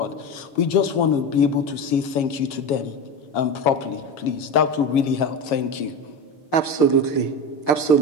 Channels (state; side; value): late; right; 7.3 ms